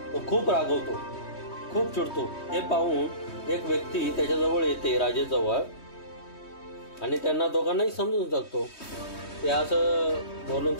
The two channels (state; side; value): late; right; 3.2 ms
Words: तो खूप रागवतो, खूप चिडतो. हे पाहून एक व्यक्ती त्याच्याजवळ येते राजेजवळ आणि त्यांना दोघांनाही समजून सांगतो ते असं बोलून